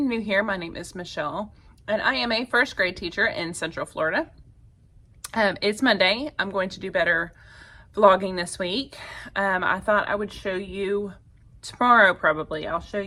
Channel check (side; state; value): both; identical; correlation 1.00